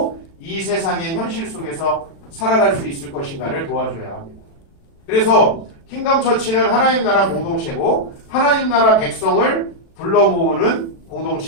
이 세상의 현실 속에서 살아갈 수 있을 것인가를 도와줘야 합니다. 그래서 킹덤 처치는 하나님 나라 공동체고 하나님 나라 백성을 불러 모으는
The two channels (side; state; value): right; late; 36 ms